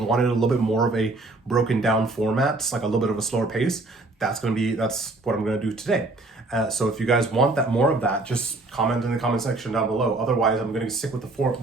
a little bit more of a broken down format, like a little bit of a slower pace, that's what I'm gonna do today. So if you guys want more of that, just comment in the comment section down below. Otherwise, I'm gonna stick with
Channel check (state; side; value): quieter; left; 3.1 dB